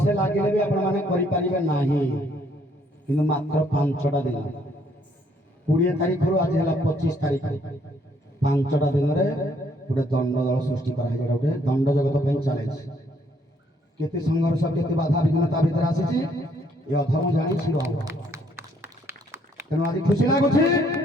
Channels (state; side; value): normal; both; correlation 0.67